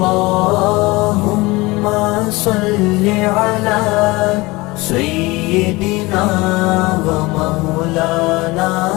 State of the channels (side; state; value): right; quieter; 22.2 dB